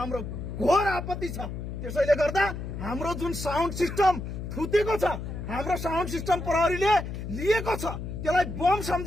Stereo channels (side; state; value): left; noise; hum, 7 dB below the sound